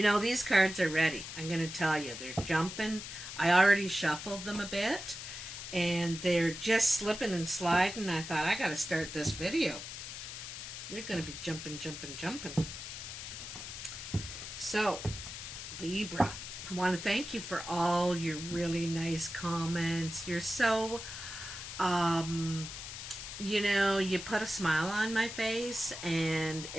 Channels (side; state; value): left; noise; hiss, 9 dB below the sound